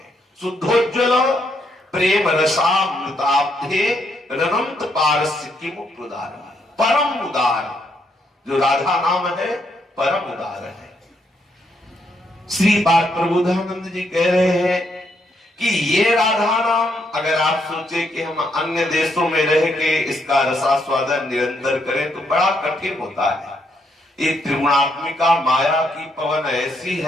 शुद्धोज्वल प्रेम रसामृताब्धे रनंत पारस्य किम प्रदान, परम उदार जो राधा नाम है परम उदार है। श्रीपाद प्रबोधानंद जी कह रहे हैं कि ये राधा नाम अगर आप सोचे कि हम अन्य देशों में रह के इसका रसास्वादन निरंतर करें तो बड़ा कठिन होता है। ये त्रिगुणात्मिका माया की पवन ऐसी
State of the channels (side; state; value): both; normal; correlation 0.75